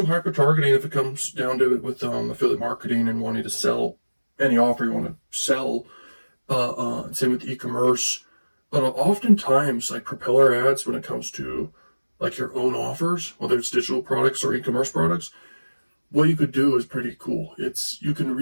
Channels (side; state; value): both; inverted; correlation -1.00